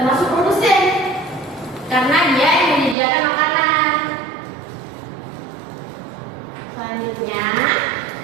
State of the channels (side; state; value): left; drops out; at 3.0 s